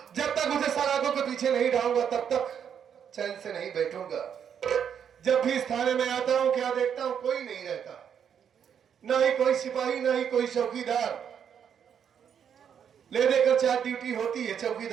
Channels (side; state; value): left; quieter; 8.1 dB